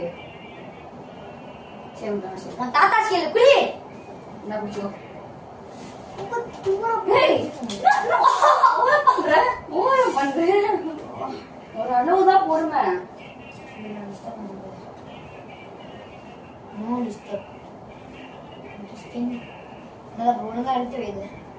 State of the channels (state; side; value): identical; both; correlation 1.00